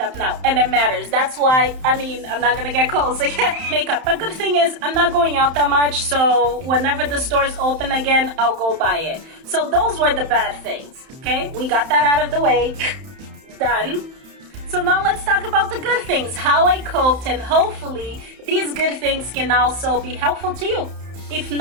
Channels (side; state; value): left; late; 31 ms